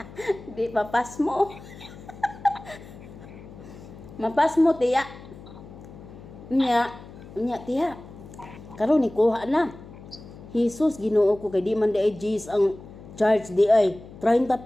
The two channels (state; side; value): noise; left; hum, 17 dB below the sound